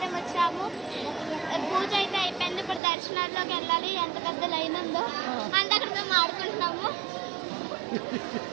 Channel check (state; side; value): drops out; left; at 2.8 s